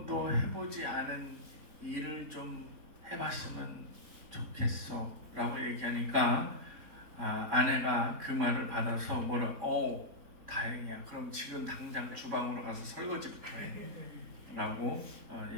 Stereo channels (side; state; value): left; late; 3.8 ms